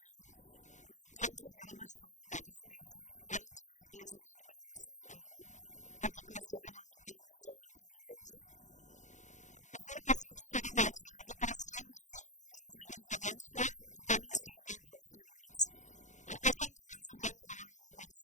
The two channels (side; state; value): right; late; 0.35 ms